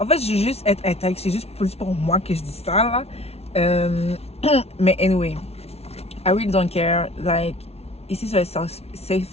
fait, je veux juste être intègre. C'est juste plus pour moi que je dis ça, là. Mais anyway, I really don't care. Like, ici, c'est un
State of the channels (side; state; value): right; late; 0.30 ms